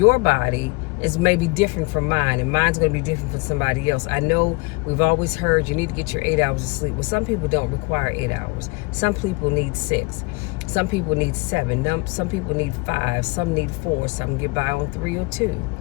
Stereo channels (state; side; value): quieter; right; 27.5 dB